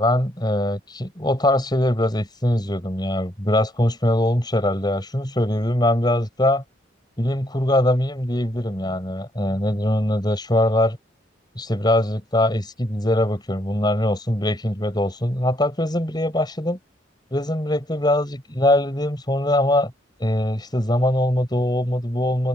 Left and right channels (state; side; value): normal; both; correlation 0.71